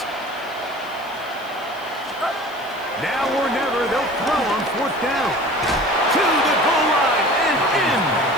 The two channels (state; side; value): noise; left; hiss, 24 dB below the sound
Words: Now or never, they'll throw on 4th down. To the goal line and in.